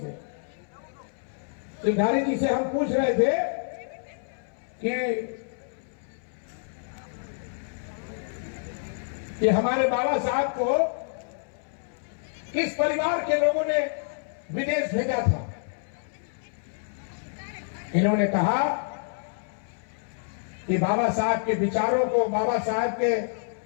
जी से हम पूछ रहे थे कि हमारे बाबा साहब को किस परिवार के लोगों ने विदेश भेजा था। इन्होंने कहा कि बाबा साहब के विचारों को, बाबा साहब के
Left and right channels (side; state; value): right; silent; 59 dB below the other